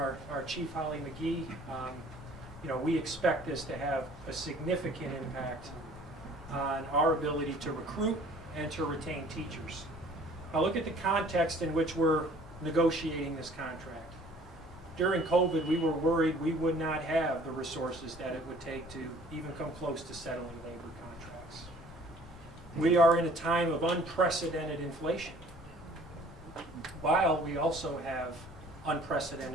Chief Holly McGee, we expect this to have a significant impact on our ability to recruit and to retain teachers. Now look at the context in which we're negotiating this contract. During COVID, we were worried we would not have the resources that it would take to even come close to settling labor contracts. We are in a time of unprecedented inflation, while we also have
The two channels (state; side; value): normal; both; correlation 0.53